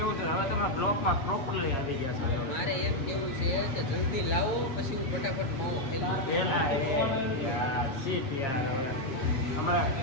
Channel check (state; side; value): late; right; 7.4 ms